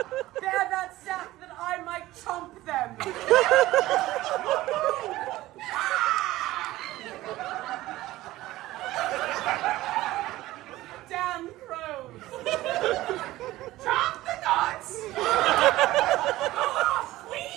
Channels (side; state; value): left; quieter; 16.8 dB